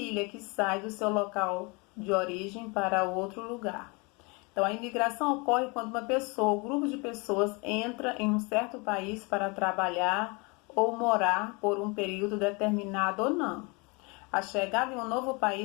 que sai do seu local de origem para outro lugar. Então, a imigração ocorre quando uma pessoa, um grupo de pessoas entra em um certo país para trabalhar ou morar por um período determinado ou não. A chegada em um novo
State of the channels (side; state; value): right; quieter; 29.4 dB